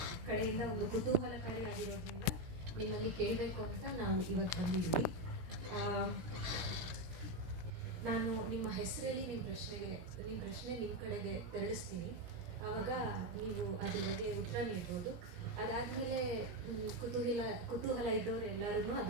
ಕಡೆಯಿಂದ ಒಂದು ಕುತೂಹಲಕಾರಿಯಾಗಿರೋದ್ರಿಂದ ನಿಮ್ಮಲ್ಲಿ ಕೇಳಬೇಕು ಅಂತ ನಾವು ಇವತ್ತು ಬಂದಿದ್ದೀವಿ. ನಾನು ನಿಮ್ಮ ಹೆಸರಲ್ಲಿ ನಿಮ್ಮ ಪ್ರಶ್ನೆ ನಿಮ್ಮ ಕಡೆಗೆ ತೆರಳಿಸ್ತೀನಿ. ಆವಾಗ ನೀವು ಅದ್ರ ಬಗ್ಗೆ ಉತ್ತರ ನೀಡ್ಬೋದು. ಅದಾದಮೇಲೆ ಕುತೂಹಲ ಇದ್ದವರು ಎಲ್ಲರೂ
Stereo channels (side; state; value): left; late; 17 ms